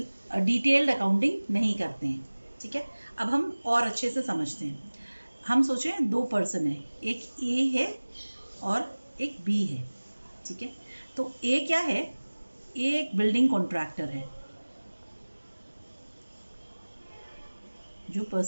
अकाउंटिंग नहीं करते हैं। ठीक है, अब हम और अच्छे से समझते हैं। हम सोचें दो पर्सन है, एक ए है और एक बी है। ठीक है, तो ए क्या है? ए एक बिल्डिंग कॉन्ट्रैक्टर है। जो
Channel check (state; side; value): inverted; both; correlation -1.00